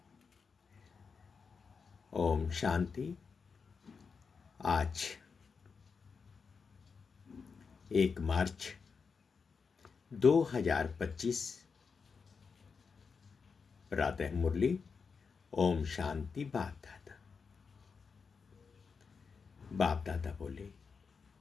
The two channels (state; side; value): quieter; right; 5.4 dB